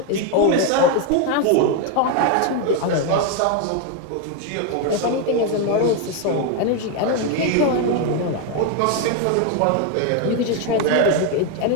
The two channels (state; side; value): different; both; correlation 0.02